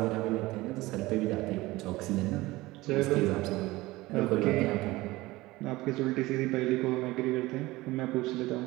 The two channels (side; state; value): left; quieter; 19.5 dB